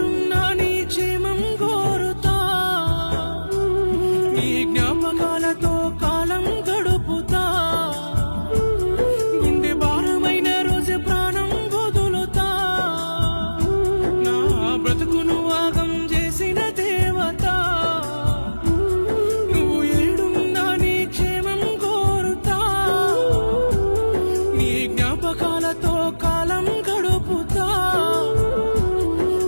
నీ క్షేమం కోరుతా నీ జ్ఞాపకాలతో కాలం గడుపుతా గుండె భారమైన రోజు ప్రాణం వదులుతా నా బ్రతుకును ఆగం చేసిన దేవత నువ్వు ఏడున్నా నీ క్షేమం కోరుతా నీ జ్ఞాపకాలతో కాలం గడుపుతా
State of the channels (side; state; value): both; inverted; correlation -1.00